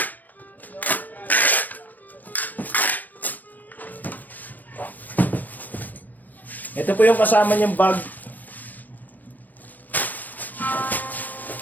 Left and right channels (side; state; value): right; late; 0.086 ms